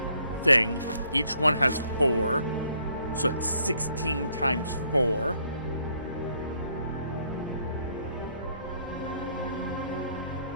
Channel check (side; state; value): both; inverted; correlation -0.67